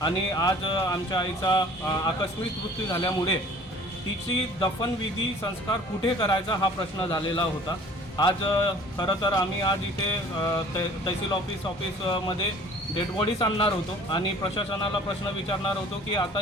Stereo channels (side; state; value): both; normal; correlation 0.50